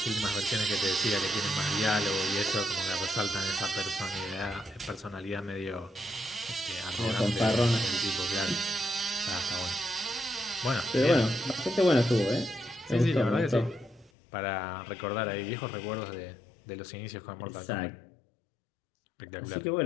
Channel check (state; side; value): drops out; right; at 14.1 s